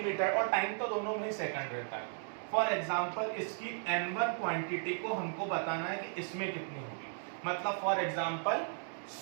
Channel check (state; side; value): silent; left; 54 dB below the other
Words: और टाइम तो दोनों में ही सेकंड रहता है। फॉर एग्जांपल इसकी n1 क्वांटिटी को हमको बताना है कि इसमें कितनी होगी, मतलब फॉर एग्जांपल